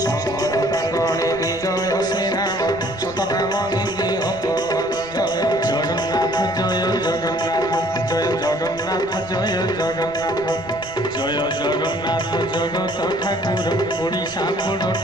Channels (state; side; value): noise; right; rumble, 20 dB below the sound